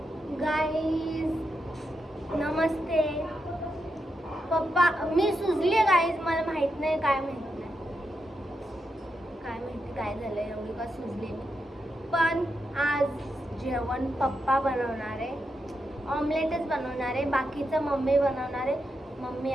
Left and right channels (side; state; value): both; normal; correlation 0.85